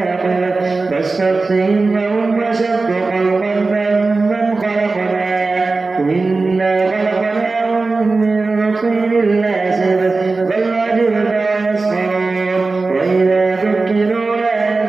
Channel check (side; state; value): left; quieter; 3.7 dB